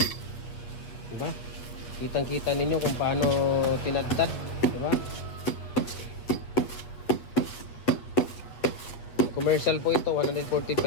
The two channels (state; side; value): late; right; 8.6 ms